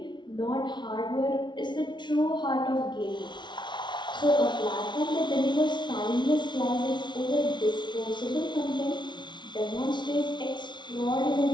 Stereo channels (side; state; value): right; late; 0.22 ms